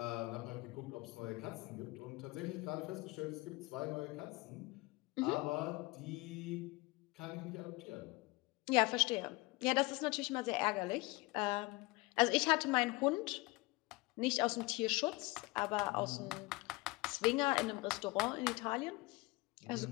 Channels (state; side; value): quieter; right; 23.7 dB